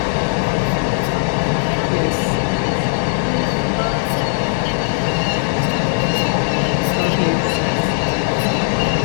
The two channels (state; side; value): silent; right; 66 dB below the other